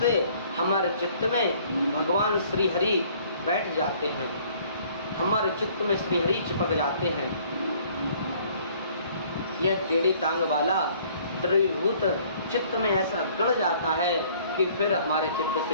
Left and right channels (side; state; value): both; inverted; correlation -0.58